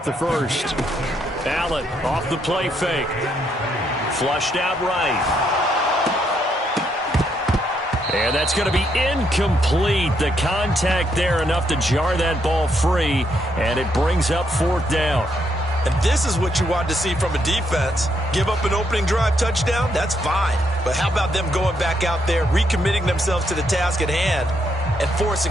the first. Allen off the play fake. Flushed out right. And that's going to be incomplete. The contact there enough to jar that ball free. And it brings up 4th down. And this is what you want to see from a defense. Give up an opening drive touchdown, that's fine. But how about them going back out there, recommitting themselves to the task at hand, and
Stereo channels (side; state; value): both; normal; correlation 0.76